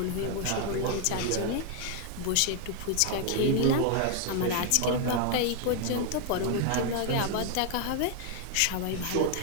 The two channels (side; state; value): both; different; correlation 0.00